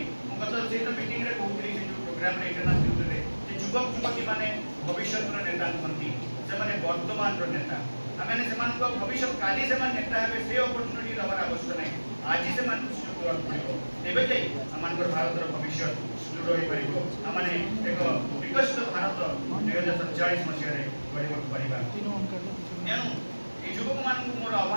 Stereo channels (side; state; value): both; inverted; correlation -1.00